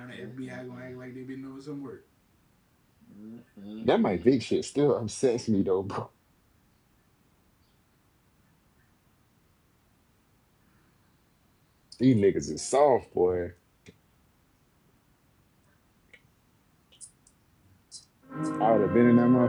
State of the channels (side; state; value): both; identical; correlation 1.00